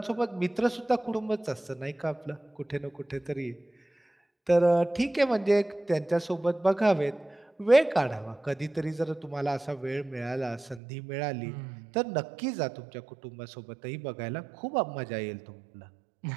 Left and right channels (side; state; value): left; drops out; at 10.8 s